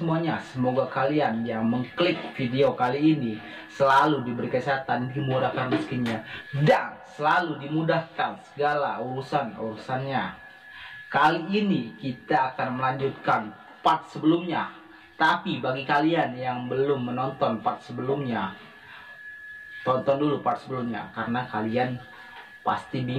Semoga kalian yang mengklik video kali ini selalu diberi kesehatan, dimudahkan rezekinya, dan selalu dimudahkan segala urusannya. Kali ini kita akan melanjutkan part sebelumnya. Tapi bagi kalian yang belum menonton part sebelumnya, tonton dulu part sebelumnya karena kalian pasti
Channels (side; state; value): both; identical; correlation 1.00